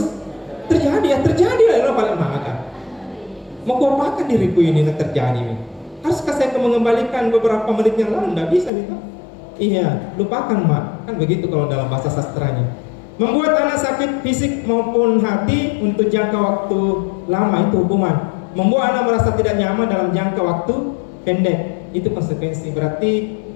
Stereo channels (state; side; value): drops out; right; at 8.7 s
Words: terjadi, ya terjadi lah, paling maka. Mau kuapakan diriku ini terjadi? Haruskah saya mengembalikan beberapa menit yang lalu? Tidak bisa gitu. Iya, lupakan mak. Kan begitu kalau dalam bahasa sastranya. Membuat anak sakit fisik maupun hati untuk jangka waktu lama itu hukuman. Membuat anak merasa tidak nyaman dalam jangka waktu pendek itu konsekuensi. Berarti